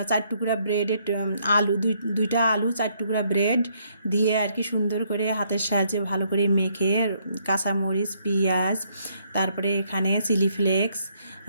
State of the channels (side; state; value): both; inverted; correlation -0.71